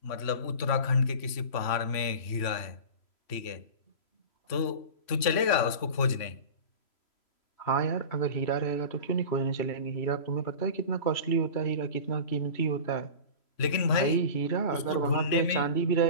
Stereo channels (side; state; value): right; late; 3.0 ms